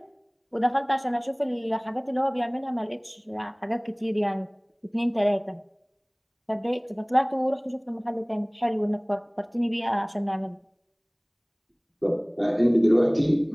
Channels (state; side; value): identical; both; correlation 1.00